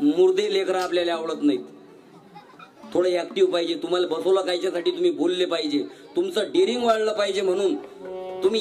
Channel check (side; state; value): both; identical; correlation 1.00